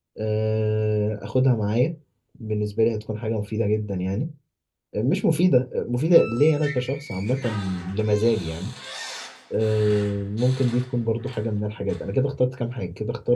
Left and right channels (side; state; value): both; identical; correlation 1.00